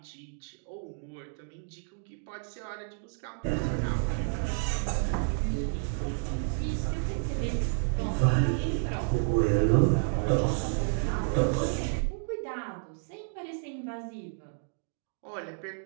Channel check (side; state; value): left; silent; digital silence